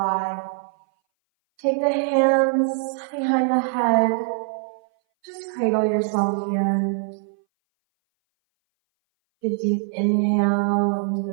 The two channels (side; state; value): left; silent; 60 dB below the other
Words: Take the hands behind the head. Just cradle yourself here. A deep inhale into